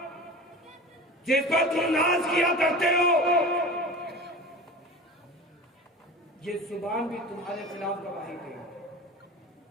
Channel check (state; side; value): normal; both; correlation 0.34